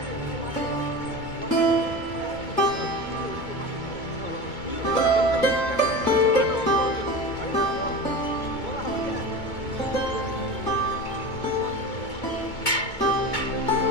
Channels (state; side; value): late; right; 2.2 ms